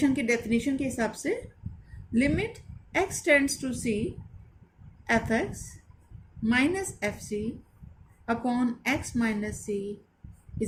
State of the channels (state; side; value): identical; both; correlation 1.00